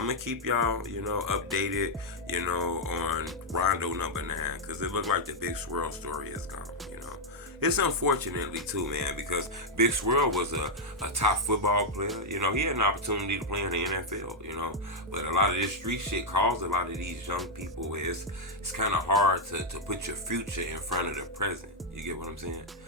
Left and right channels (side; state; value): both; normal; correlation -0.02